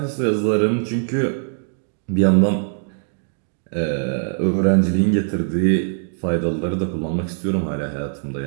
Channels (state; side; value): silent; left; digital silence